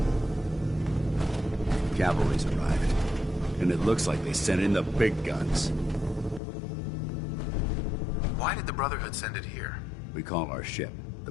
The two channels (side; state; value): right; drops out; at 6.4 s